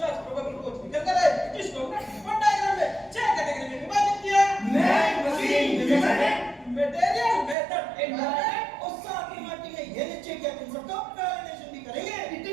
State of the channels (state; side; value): drops out; left; at 7.6 s